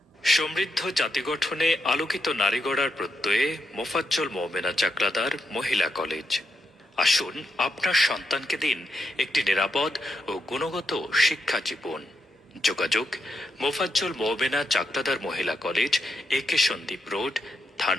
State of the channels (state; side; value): normal; both; correlation 0.82